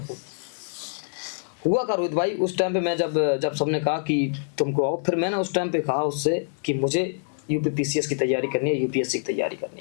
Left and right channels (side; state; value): right; silent; 61 dB below the other